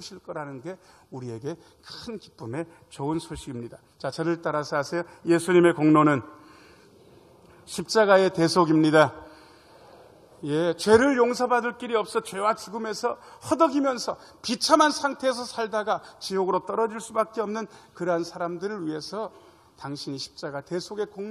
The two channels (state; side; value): identical; both; correlation 1.00